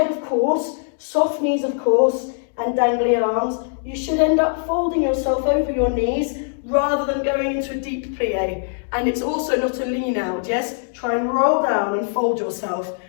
of course, soft knees, of course, and dangly arms. You should end up folding yourself over your knees rather than going into a deep plie. And it's also not a lean out, yes? Try and roll down and fold yourself.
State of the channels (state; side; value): silent; right; digital silence